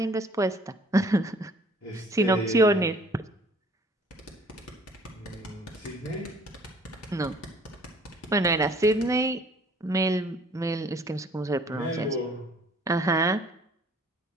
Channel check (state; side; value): normal; both; correlation 0.55